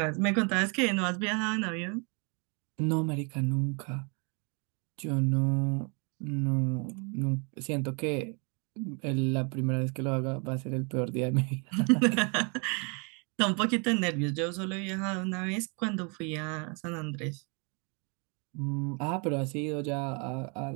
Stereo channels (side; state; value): left; quieter; 34.9 dB